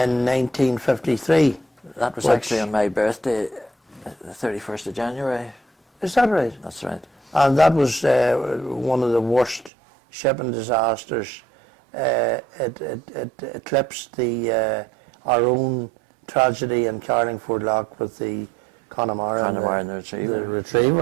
That was actually on my birthday, the 31st of January. Is that right? That's right. And that was one of the worst shipping disasters. It eclipsed our own tragedy in Carlingford Lock with the Connemara and the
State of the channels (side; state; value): left; drops out; at 9.7 s